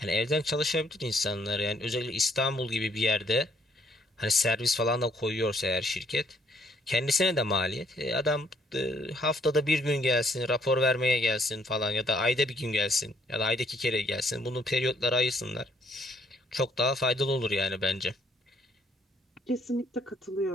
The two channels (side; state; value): both; normal; correlation 0.67